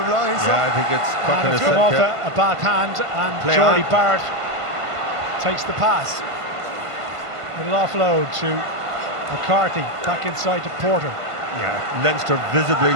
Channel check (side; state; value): left; late; 1.5 ms